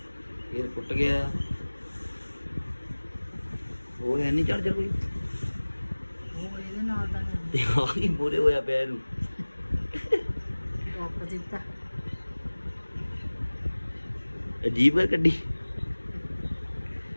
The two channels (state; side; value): inverted; both; correlation -1.00